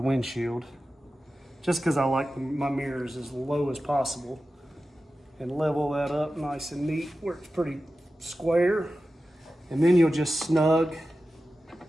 windshield, just because I like my mirrors as low as possible, and level that up nice and neat where it's pretty square. And then you'll just snug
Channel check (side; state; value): both; normal; correlation 0.93